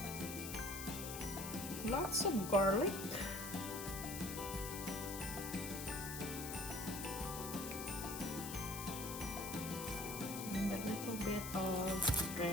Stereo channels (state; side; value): noise; left; hiss, 7 dB below the sound